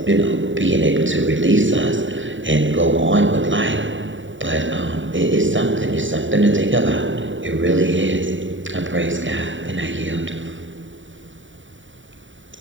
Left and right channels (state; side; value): late; left; 0.55 ms